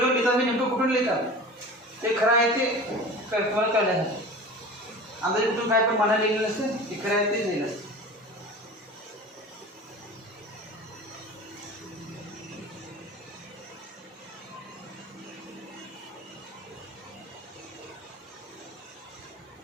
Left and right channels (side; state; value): both; normal; correlation 0.36